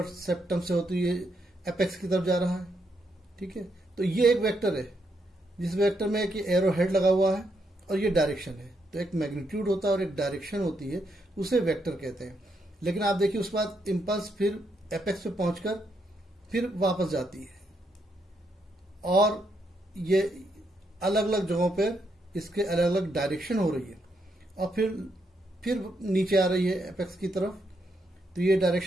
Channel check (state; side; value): normal; both; correlation 0.78